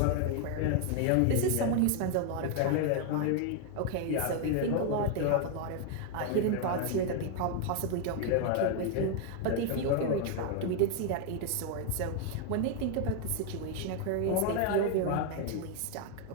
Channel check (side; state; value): both; different; correlation 0.00